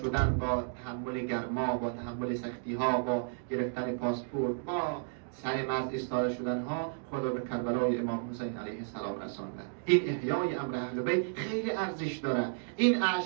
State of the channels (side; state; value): left; silent; digital silence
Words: با تحمل گرما، با تحمل سختی ها، با گرفتن پاسپورت، با سر مرز ایستاده شدن ها، خود را به کربلای امام حسین علیه السلام رسانده. این احیای امر اهل بیت خیلی ارزش داره. این